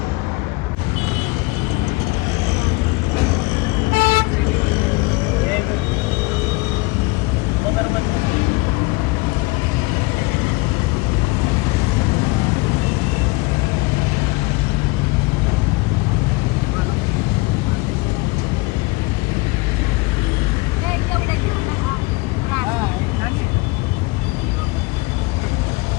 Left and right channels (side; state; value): right; quieter; 24.0 dB